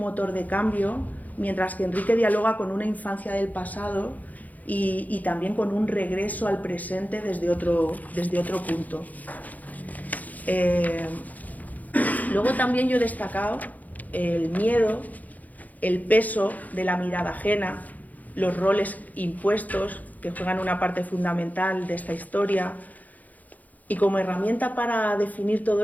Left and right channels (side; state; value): right; late; 0.079 ms